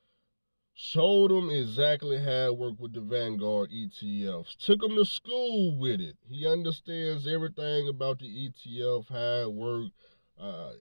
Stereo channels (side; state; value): both; inverted; correlation -1.00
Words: Showed him exactly how it worked with the Vanguard ETFs. Took him to school with it. He understands everything about the ETF, how it worked.